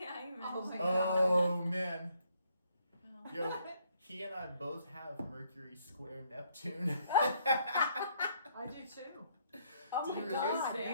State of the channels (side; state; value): both; inverted; correlation -0.69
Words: I Oh, mentioned. my Oh man. Oh. Yo, he and I both have Mercury square Neptune. I do too. Oh Do my you really? God,